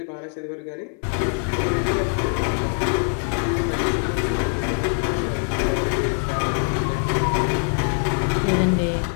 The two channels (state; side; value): silent; right; 57 dB below the other